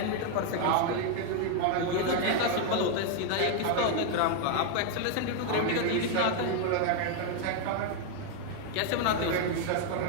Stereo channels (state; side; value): different; both; correlation 0.00